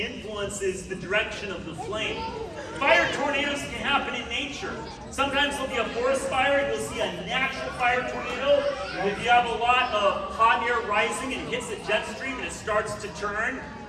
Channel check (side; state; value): both; identical; correlation 1.00